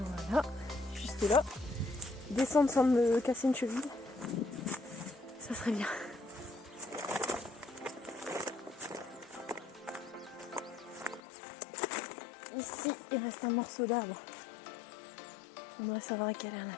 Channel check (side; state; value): right; drops out; at 11.2 s